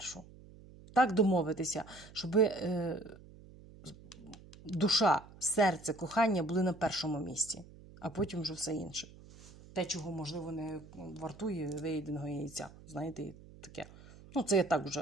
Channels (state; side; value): noise; right; hum, 20 dB below the sound